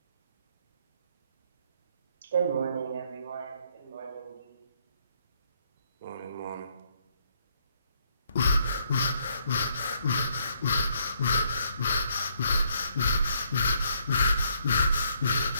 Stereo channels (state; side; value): inverted; both; correlation -0.71